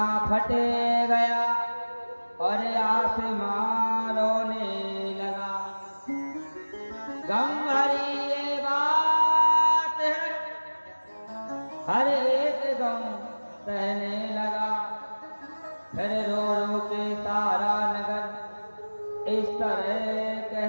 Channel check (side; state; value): both; inverted; correlation -1.00